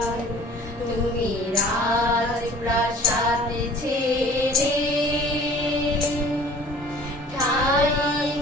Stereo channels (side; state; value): both; normal; correlation 0.48